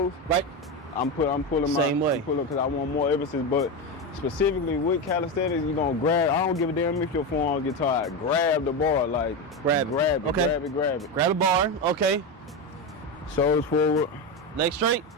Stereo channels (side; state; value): both; normal; correlation 0.15